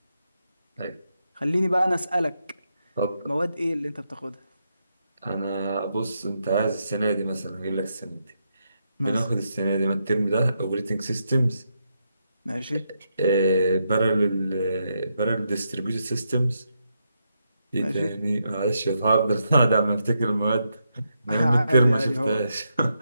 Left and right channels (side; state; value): both; inverted; correlation -0.82